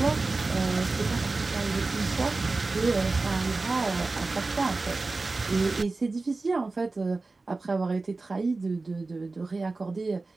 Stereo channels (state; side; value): quieter; left; 3.5 dB